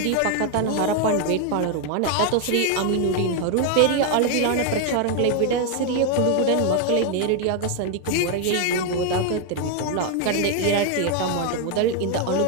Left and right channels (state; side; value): different; both; correlation 0.01